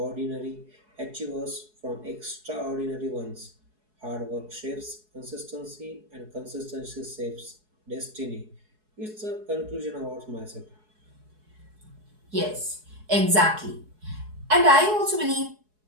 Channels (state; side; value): late; left; 4.7 ms